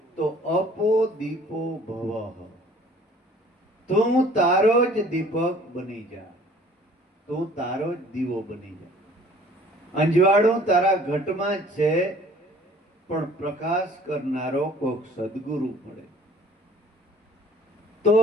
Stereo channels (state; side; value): normal; both; correlation 0.53